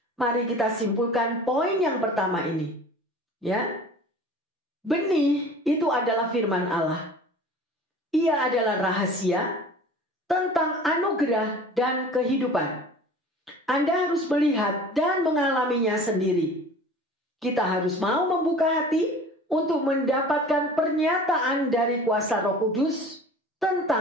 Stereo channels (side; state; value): both; normal; correlation 0.43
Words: Mari kita simpulkan poin yang pertama ini. Ya, benih itu adalah firman Allah. Ia adalah rahasia tentang anugerah dan kehidupan. Anda harus melihat dan mengalaminya sendiri. Kita harus mau membuka hati untuk mendapatkan pernyataan dari kuasa Roh Kudus